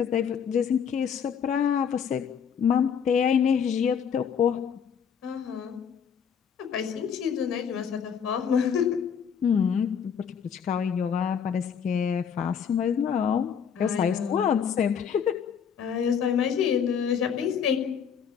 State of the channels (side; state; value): right; quieter; 7.4 dB